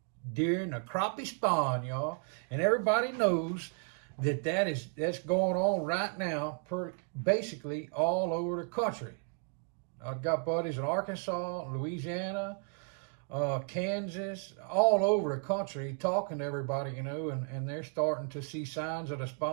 during the crappie spawn, y'all. And everybody knows that's going on right now, basically all over the country. I've got buddies in Arkansas, Louisiana, Kansas, all over the country talking to everybody, and they're starting to see signs of the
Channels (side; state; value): left; quieter; 36.5 dB